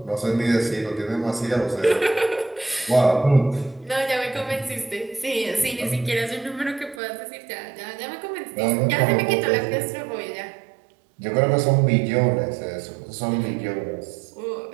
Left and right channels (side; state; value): left; drops out; at 7.0 s